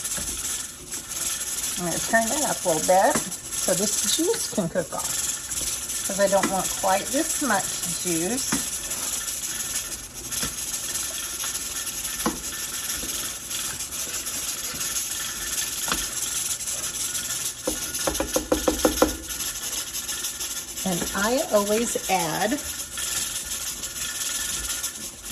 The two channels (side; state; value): both; identical; correlation 1.00